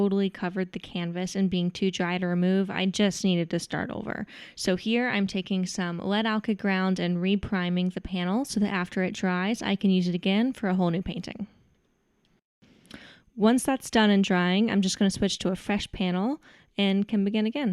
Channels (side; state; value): both; identical; correlation 1.00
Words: covered the canvas and being too dry to remove, I just needed to start over. So here I'm taking some lead alkyd ground and re-priming the panel so that after it dries, I can use it again for a whole new painting. Once that's done and drying, I'm just going to switch to a fresh panel and can begin